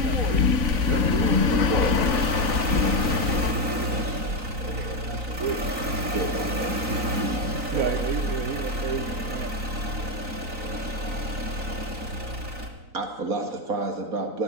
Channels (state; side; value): late; left; 3.9 ms